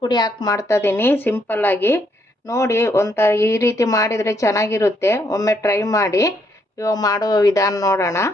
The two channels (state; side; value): normal; both; correlation 0.73